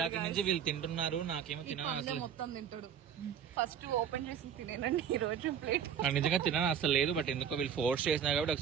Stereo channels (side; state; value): left; quieter; 8.2 dB